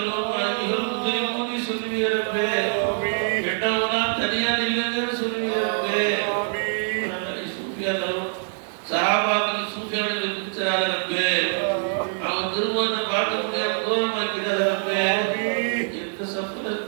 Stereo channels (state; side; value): silent; left; 62 dB below the other